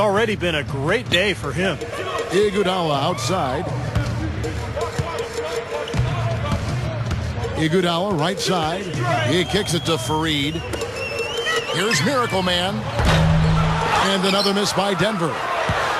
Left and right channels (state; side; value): identical; both; correlation 1.00